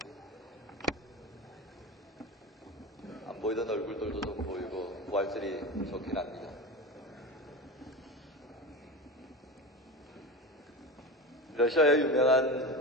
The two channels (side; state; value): both; normal; correlation 0.26